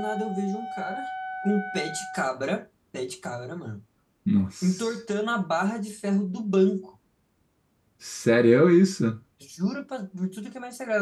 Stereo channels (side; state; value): both; identical; correlation 1.00